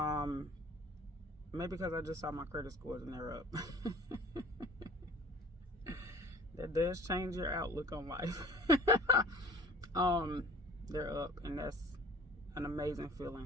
Maybe because I just saw my credit scores and they're up. That does change your outlook on life. They're up, and that's an amazing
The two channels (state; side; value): normal; both; correlation 0.47